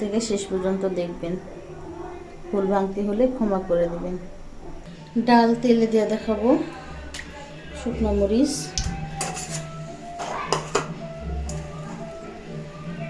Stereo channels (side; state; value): both; identical; correlation 1.00